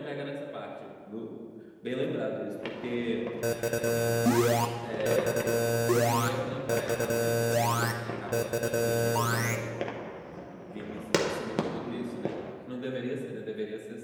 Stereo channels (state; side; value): identical; both; correlation 1.00